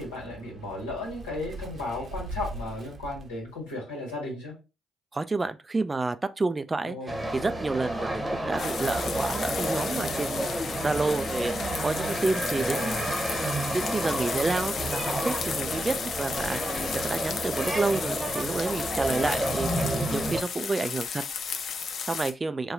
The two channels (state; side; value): normal; both; correlation 0.86